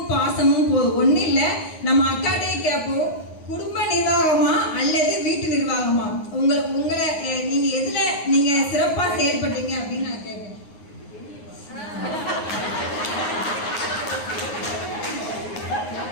பாசமும் போதும். ஒண்ணு இல்ல, நம்ம அக்காட்டையே கேட்போம், குடும்ப நிர்வாகமா அல்லது வீட்டு நிர்வாகமா, உங்களை நீங்க எதுல நீங்க சிறப்பா செயல்படுறீங்க அப்படின்னு நான் கேட்பேன்.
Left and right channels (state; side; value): late; right; 9.6 ms